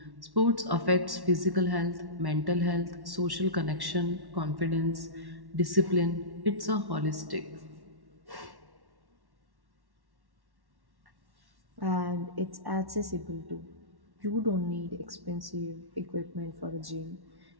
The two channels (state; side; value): late; left; 1.1 ms